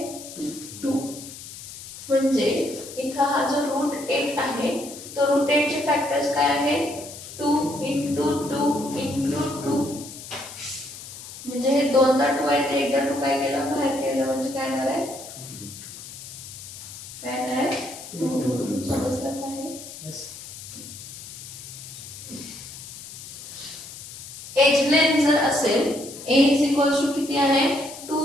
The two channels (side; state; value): left; noise; hiss, 13 dB below the sound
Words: म्हणजे इथं हा जो रूट 8 आहे तो रूट 8 चे फॅक्टर्स काय आहेत 2 into 2 into 2 म्हणजे हे दोनदा 2 आहे ते एकदा 2 काय केलं बाहेर केलं म्हणजे काय येणार आहे काय येणार आहे 2 समजलं काय एज लेंथ जर असेल a इज इक्वल्स टू किती आहे 2